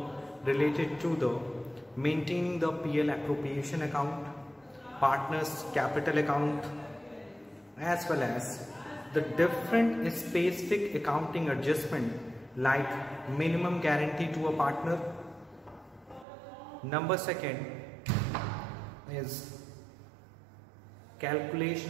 related to the maintaining the PL appropriation account, partners capital account, as well as the different specific accounting adjustment like minimum guarantee to a partner. Number second is calculation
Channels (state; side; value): drops out; left; at 16.2 s